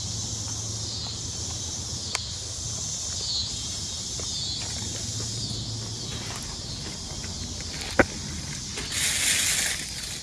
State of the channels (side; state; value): both; identical; correlation 1.00